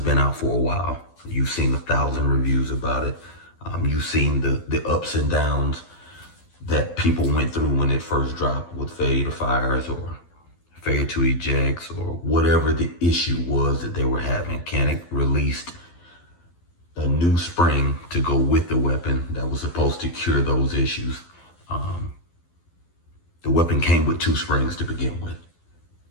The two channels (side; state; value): right; late; 12 ms